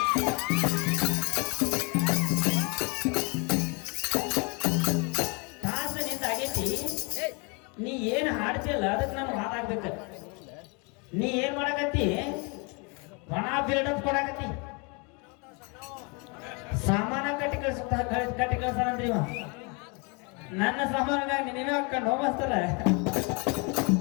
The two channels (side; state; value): right; quieter; 31.8 dB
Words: ತಾಸ ನಿಂದ ಆಗೈತಿ, ನೀ ಏನ್ ಹಾಡ್ತಿಲ್ಲ ಅದಕ್ಕೆ ನಾನು ಹಾಡಾಗ್ಬೇಕ. ನೀ ಏನ್ ಮಾಡಕತ್ತಿ, ಒಣ ಬಿಲ್ಡಪ್ ಕೊಡಕತ್ತಿ. ಸಾಮಾನ ಕಟ್ಟಿ ಕಳ್ಸಾನಂದ್ರಿ ಇವ. ನನ್ನ ಸಾಮಾನಾಗ ನೀವೇ ಹಾಕೊಂಡು ಹೋಗ್ತಾರ.